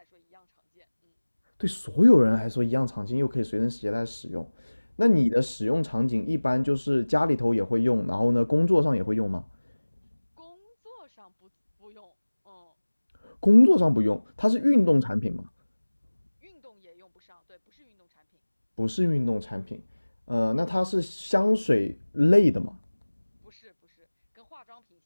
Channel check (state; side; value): inverted; both; correlation -1.00